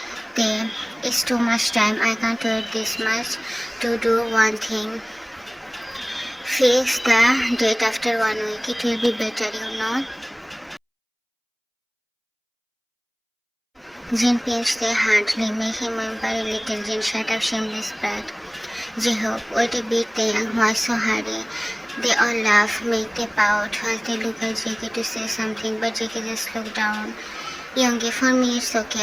It's too much time. I can't wait this much to do one thing. Fix the date after 1 week. It will be better, you know. Jin pinched their hardly, make him whimper a little. Jin, shut up, shameless brat. J-Hope, wait a bit, why so hurry? They all laugh, make they pout, while they look at JK to say something, but JK just looked down. Youngie, for me it's okay,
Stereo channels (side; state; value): both; identical; correlation 1.00